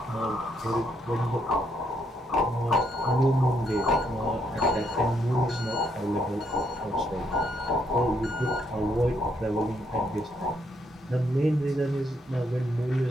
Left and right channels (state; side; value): normal; both; correlation 0.74